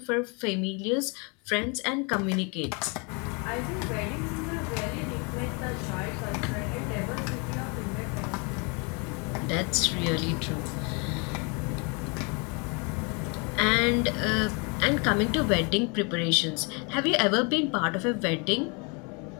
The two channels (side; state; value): right; quieter; 32.6 dB